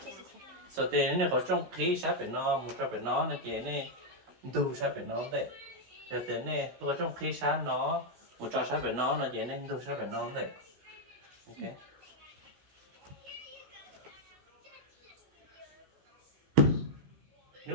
So tiền này có trong khi sát phải nó một sát phải nó là chỉ nên đủ sát phải nó đây. Giờ tiền này tôi có trong khi sát nó một trò sát phải nó là chỉ nên đủ sát phải nó đây. Okay.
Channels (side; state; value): left; late; 16 ms